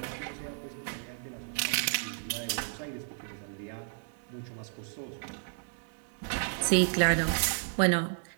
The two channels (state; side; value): silent; left; digital silence